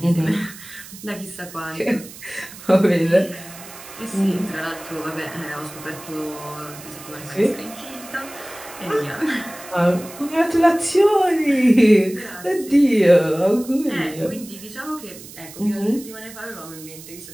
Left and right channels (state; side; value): noise; right; hiss, 16 dB below the sound